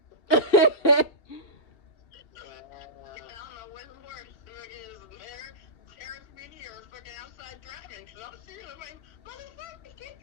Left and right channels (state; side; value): late; right; 2.7 ms